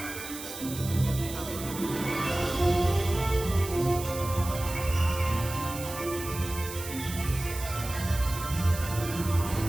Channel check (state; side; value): noise; right; hiss, 10 dB below the sound